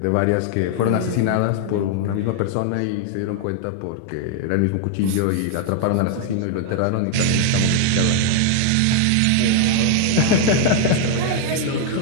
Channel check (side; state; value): both; different; correlation 0.00